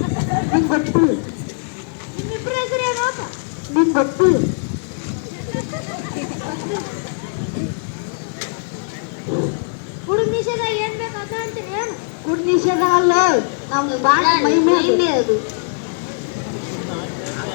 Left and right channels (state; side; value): silent; right; digital silence